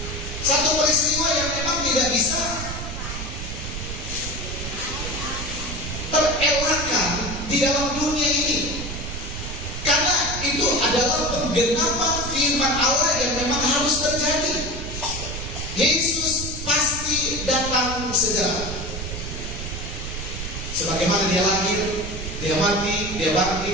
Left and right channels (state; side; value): noise; right; rumble, 7 dB below the sound